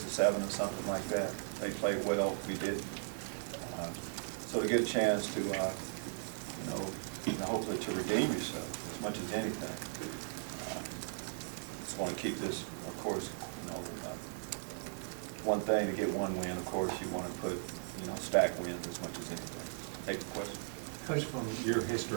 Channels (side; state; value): left; silent; digital silence